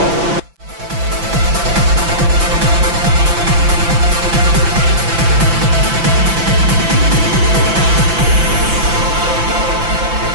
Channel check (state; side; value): late; left; 5.9 ms